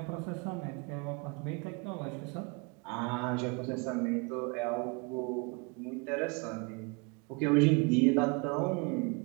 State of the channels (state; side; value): quieter; left; 30.4 dB